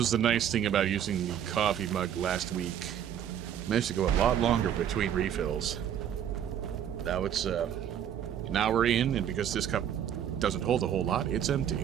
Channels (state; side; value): quieter; left; 9.6 dB